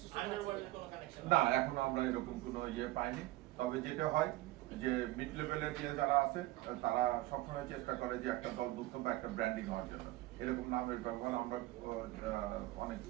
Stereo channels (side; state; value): left; quieter; 17.9 dB